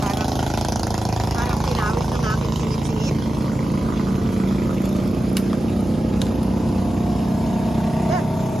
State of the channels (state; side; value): normal; both; correlation 0.93